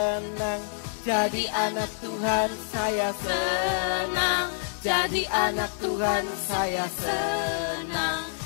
jadi anak Tuhan, saya senang jadi anak Tuhan, saya senang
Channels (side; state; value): right; silent; digital silence